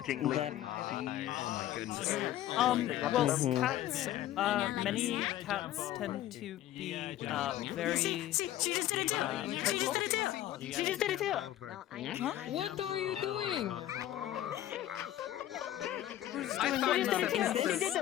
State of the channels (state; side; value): quieter; right; 13.2 dB